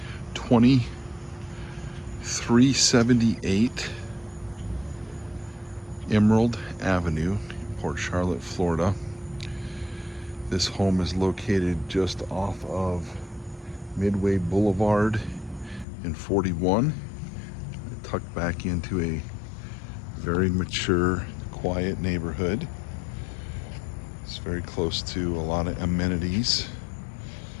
2378 Emerald Avenue, Port Charlotte, Florida. This home is located just off of Midway Boulevard in 41, tucked back into a very mature, quiet neighborhood. It's very close to a lot of amenities,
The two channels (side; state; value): right; drops out; at 15.9 s